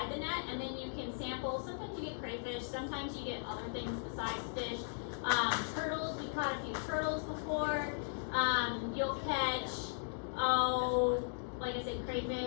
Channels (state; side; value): silent; right; digital silence